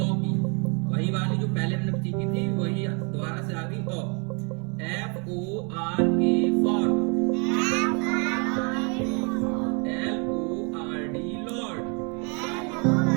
की वही वाली जो पहले हमने सीखी थी वही दोबारा से आ गई। ओ FORK for, LORD Lord,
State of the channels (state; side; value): quieter; left; 34.8 dB